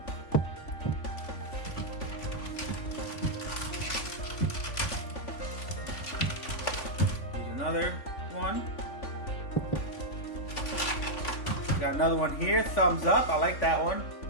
Here's another one. Got another one here, thumbs up. I like that one.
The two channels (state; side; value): late; right; 3.5 ms